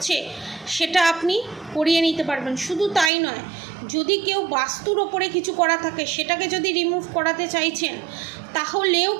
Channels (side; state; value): left; drops out; at 3.1 s